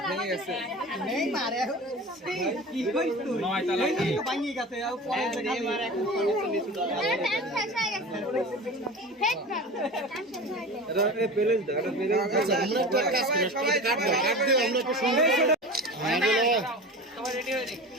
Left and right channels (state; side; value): normal; both; correlation 0.33